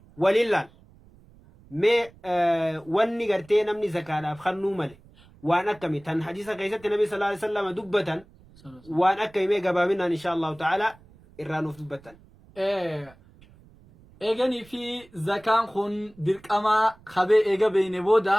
ولله ما واني قرتي نمني زكاة خنو مالي وان أكمي تن حديث قيسة النبي صلى الله عليه وسلم دبة وان أكمي قبامنا إن شاء الله تعالى إرانو في دبة إيغاني في زكاة خن ديرك أما خبي إيغا بين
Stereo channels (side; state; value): right; noise; rumble, 26 dB below the sound